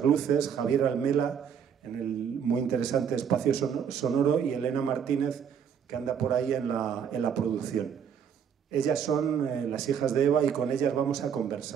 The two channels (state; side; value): quieter; left; 7.8 dB